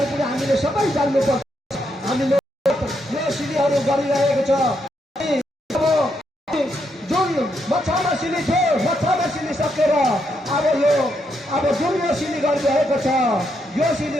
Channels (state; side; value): normal; both; correlation 0.79